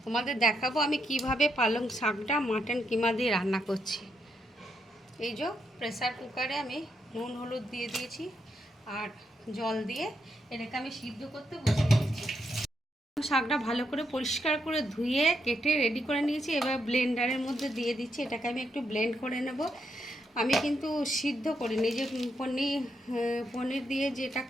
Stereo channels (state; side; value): normal; both; correlation 0.80